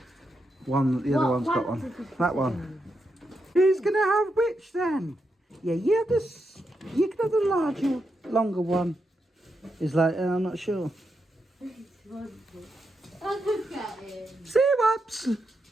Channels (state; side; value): normal; both; correlation 0.84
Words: the other one's got one. That one. Who's going to have which then? Yeah, you have this. You can have the larger, longer one. He's like, I'm not sure. Oh, look at him. See whoops.